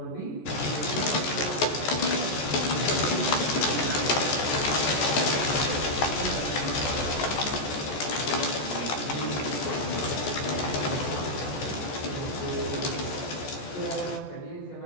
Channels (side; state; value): right; late; 14 ms